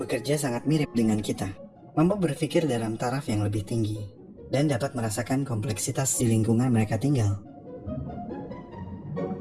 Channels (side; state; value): both; identical; correlation 1.00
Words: sangat mirip dengan kita, mampu berpikir dalam taraf yang lebih tinggi, dan dapat merasakan kompleksitas di lingkungan mereka tinggal.